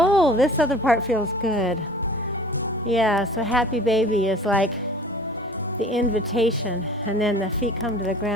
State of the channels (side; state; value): both; normal; correlation 0.45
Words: this other part feels good. Yeah, so happy baby is like the invitation, and then the feet come to the